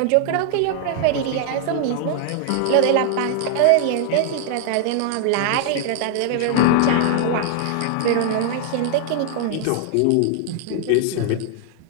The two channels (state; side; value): different; both; correlation 0.00